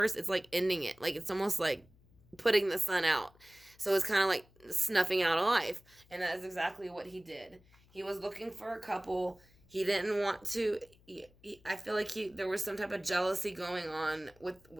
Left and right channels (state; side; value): noise; left; hum, 29 dB below the sound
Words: it's like ending it. Like it's almost like putting the sun out. So it's kind of like snuffing out a life. And that is exactly what he did. He was looking for a couple. He didn't want to, I feel like there was some type of jealousy going on with